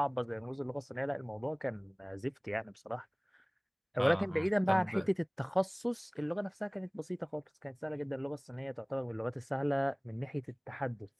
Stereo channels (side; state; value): both; identical; correlation 1.00